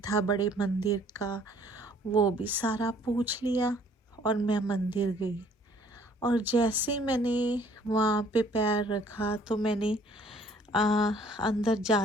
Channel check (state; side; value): normal; both; correlation 0.59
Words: था बड़े मंदिर का वो भी सारा पूछ लिया, और मैं मंदिर गई। और जैसे ही मैंने वहाँ पे पैर रखा, तो मैंने अंदर